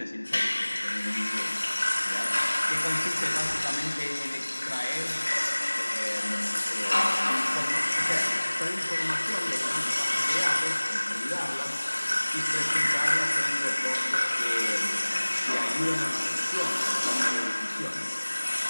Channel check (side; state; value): both; inverted; correlation -1.00